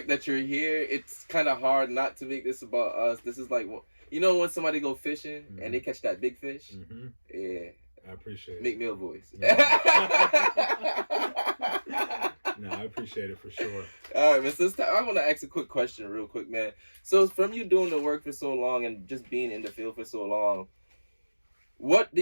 that you're here, it's kind of hard not to make this about us. This is like, you know, when somebody go fishing and they catch that big fish. Mm-hmm. Yeah, I appreciate it. Make me a voice. No, I appreciate it for sure. All right, man. So I want to ask a quick question real quick, man. So from you doing the work for so long and just being in the field for so long, what do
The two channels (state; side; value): inverted; both; correlation -1.00